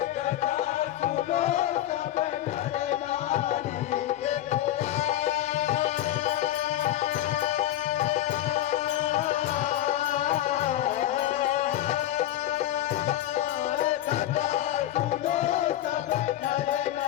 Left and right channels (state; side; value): quieter; right; 13.0 dB